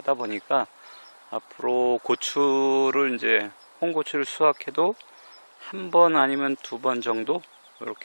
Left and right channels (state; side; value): inverted; both; correlation -1.00